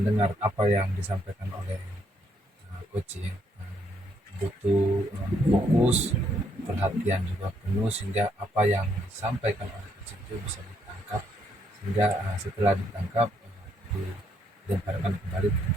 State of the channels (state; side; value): normal; both; correlation 0.72